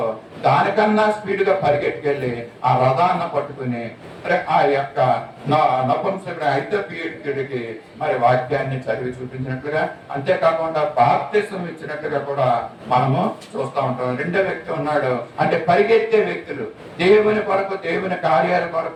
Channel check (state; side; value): identical; both; correlation 1.00